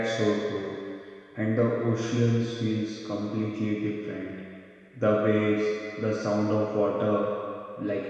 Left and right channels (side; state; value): both; identical; correlation 1.00